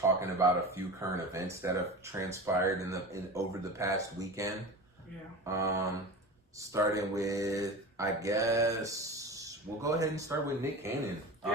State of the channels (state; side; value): normal; both; correlation 0.31